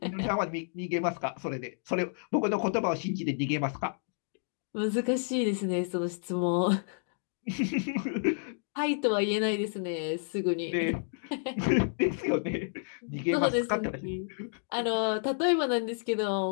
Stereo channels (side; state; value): right; silent; digital silence